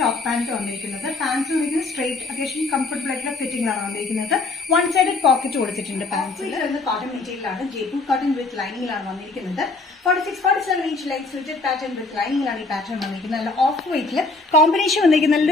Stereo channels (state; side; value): quieter; right; 3.5 dB